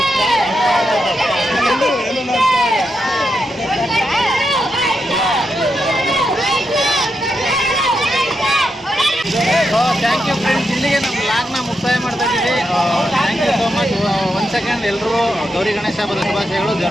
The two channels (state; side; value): normal; both; correlation 0.84